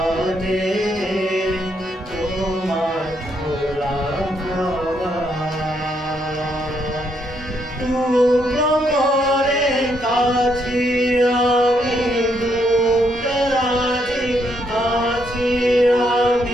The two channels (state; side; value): normal; both; correlation 0.75